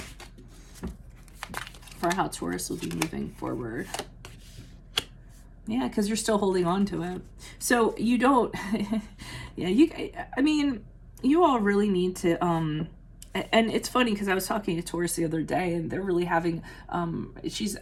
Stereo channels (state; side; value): identical; both; correlation 1.00